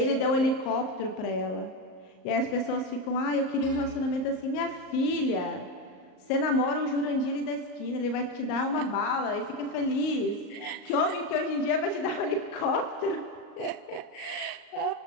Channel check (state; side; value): late; right; 38 ms